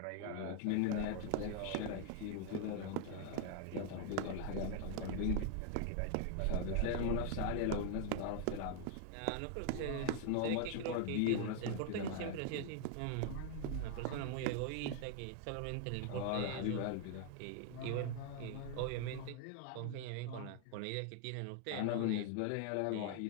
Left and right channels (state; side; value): different; both; correlation 0.00